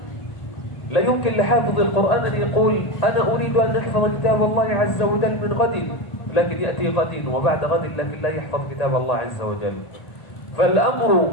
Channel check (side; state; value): right; late; 1.8 ms